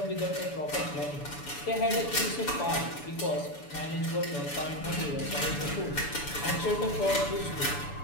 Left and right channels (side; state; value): right; late; 6.9 ms